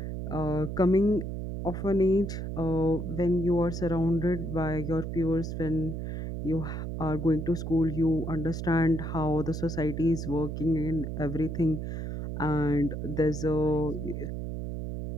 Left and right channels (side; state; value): right; noise; hum, 5 dB below the sound